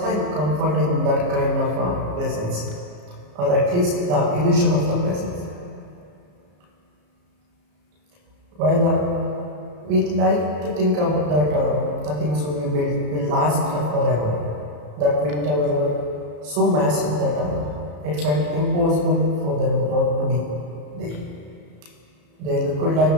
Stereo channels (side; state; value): left; late; 34 ms